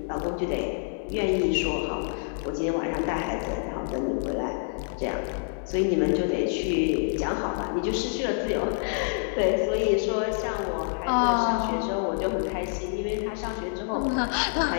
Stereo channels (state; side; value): silent; right; 60 dB below the other